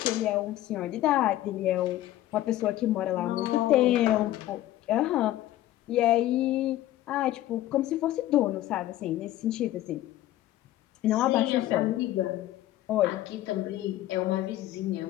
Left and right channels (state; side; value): quieter; right; 14.4 dB